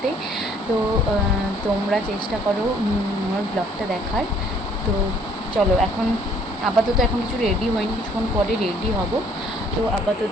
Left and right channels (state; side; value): normal; both; correlation 0.60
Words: তো তোমরা চেষ্টা করো আমার ব্লগটা দেখার। তো চলো, এখন আপাতত এখন কিছু রেডি হয়নি, কিছুক্ষণ পরে রেডি হব। তো